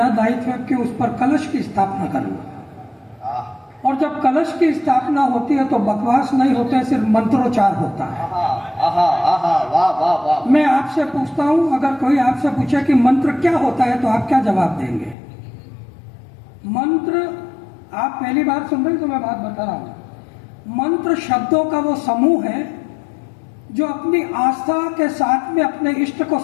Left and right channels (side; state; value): right; drops out; at 15.2 s